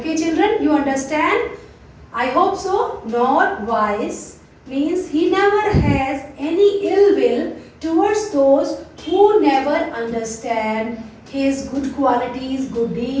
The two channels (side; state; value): both; identical; correlation 1.00